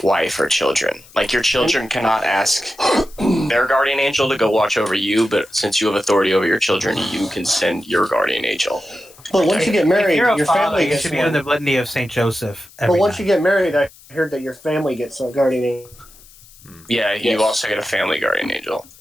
wife or children. Like your children cannot ask their guardian angel to go watch over you, but since you have authority over your children, you can send your guardian angel. But once you get married, if you're a your father, family you gets should be one. doing the litany of Saint Joseph. But Every once night. you get married, I heard that your family gets a guardian angel. Yeah, you Yes. also get a family guardian angel.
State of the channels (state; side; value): noise; left; hiss, 24 dB below the sound